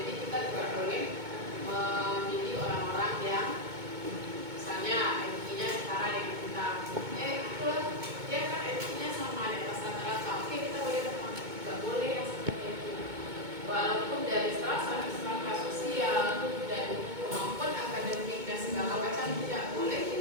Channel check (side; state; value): left; late; 2.2 ms